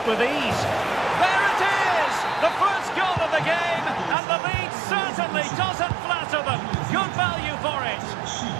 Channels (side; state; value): left; drops out; at 4.2 s